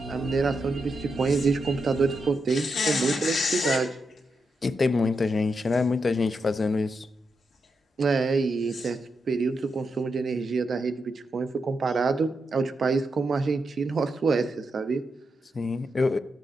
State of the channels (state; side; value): normal; both; correlation 0.85